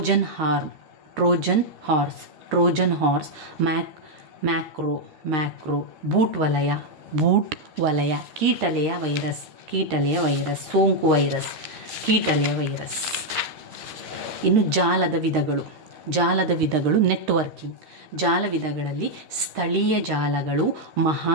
horse, macro, boot ವಲಯ, ಕೀಟಲೆಯ ವೈರಸ್, ಸೋಂಕು ವೈರಸ್, ಕೀಟಲೆಯ ವೈರಸ್. ಇನ್ನು ಜಾಲದ ವಿಧಗಳು ನೆಟ್ವರ್ಕಿಂಗ್. ಜಾಲ ವಿಧಗಳಲ್ಲಿ ಸ್ಥಳೀಯ ಜಾಲಗಳು,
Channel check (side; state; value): left; late; 13 ms